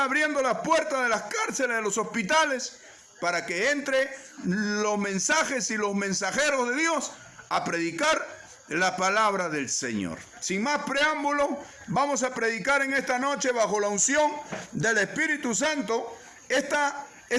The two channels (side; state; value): both; identical; correlation 1.00